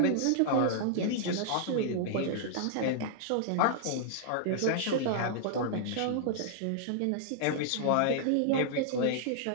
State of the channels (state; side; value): different; both; correlation -0.01